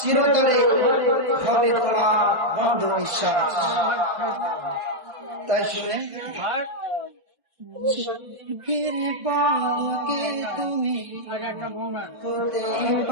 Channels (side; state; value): left; late; 1.5 ms